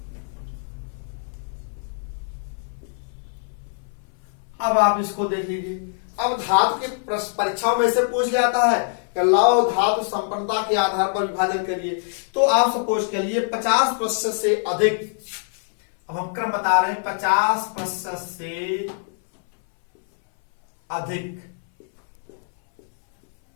अब आप इसको देख लीजिए। अब धातु के परीक्षाओं में से पूछ जाता है कि लौह धातु संपन्नता के आधार पर विभाजन करिए। तो आप सपोज के लिए 50% से अधिक, अब हम क्रम बता रहे हैं, 50% से अधिक,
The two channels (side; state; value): right; silent; 63 dB below the other